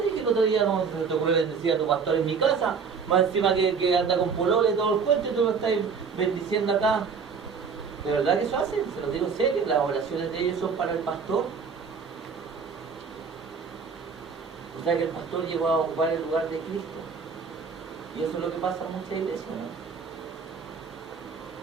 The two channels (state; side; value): quieter; left; 5.7 dB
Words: dije el otro día, no se te ocurre bendecir a tu pastor en mi casa. Más encima que anda con polole y todo el cuento y tú lo estás bendiciendo acá. ¿De verdad que eso hacen? Se los digo en serio, las oraciones de ellos son para el pastor. O sea que el pastor llegó a ocupar el lugar de Cristo. Y eso es lo que pasa en muchas iglesias, ¿no?